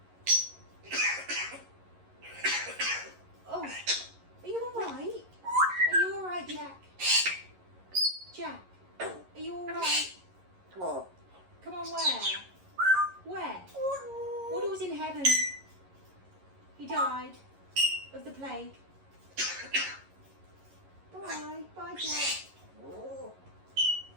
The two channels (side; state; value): left; late; 11 ms